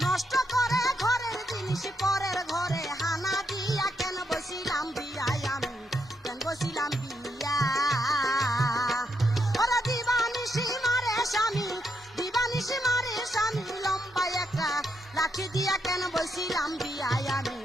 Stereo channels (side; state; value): both; normal; correlation 0.80